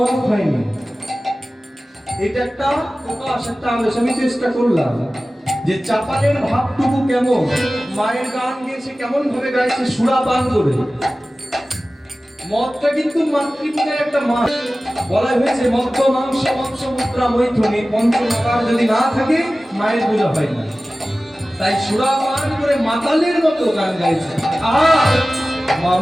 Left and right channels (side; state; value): both; normal; correlation 0.96